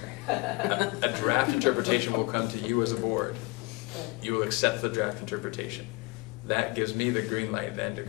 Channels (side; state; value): right; quieter; 26.0 dB